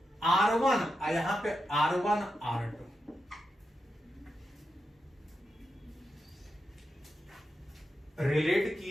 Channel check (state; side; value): normal; both; correlation 0.88